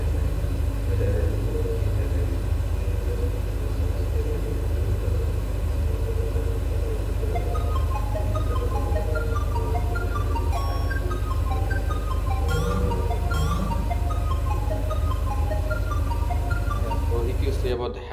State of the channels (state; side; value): identical; both; correlation 1.00